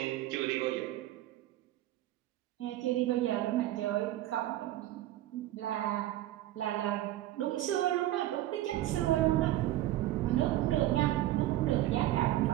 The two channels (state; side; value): quieter; left; 14.7 dB